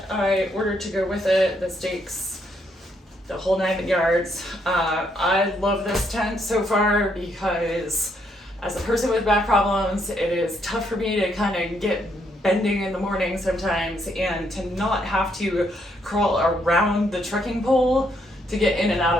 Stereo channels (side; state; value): both; normal; correlation 0.74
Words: I ordered to go with it, the stakes, the whole 9 yards. I love this tent so far because as a person with back problems, it is tough for me to kind of get bending in the morning sometimes, and to not have to crawl around the trekking pole to get in and out